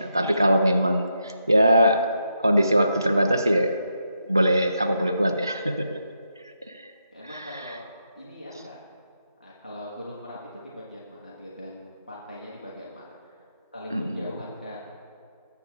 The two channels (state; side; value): inverted; both; correlation -0.82